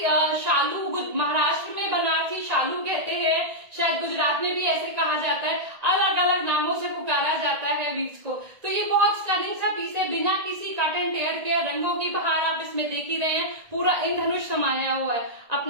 शालू, महाराष्ट्र में बनारसी शालू कहते हैं, शायद गुजरात में भी ऐसे कहा जाता है, अलग अलग नामों से पुकारा जाता है वीव्स को। तो ये बहुत स्टनिंग सा पीस है, बिना किसी कट एंड टेयर के। रंगों की बहार आप इसमें देख ही रहे हैं, पूरा इंद्रधनुष समाया हुआ है।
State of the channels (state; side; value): late; left; 1.9 ms